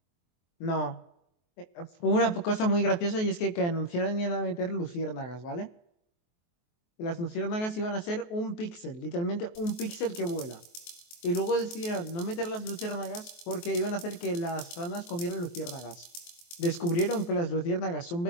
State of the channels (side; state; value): right; late; 23 ms